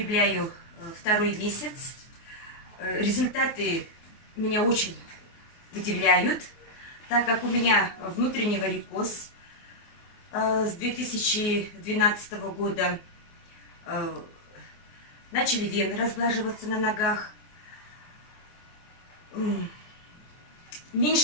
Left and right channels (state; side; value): late; right; 24 ms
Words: второй месяц. Результаты меня очень удивляют, так как у меня внутренний варикоз. С 2012 года начали вены разглаживаться на ногах.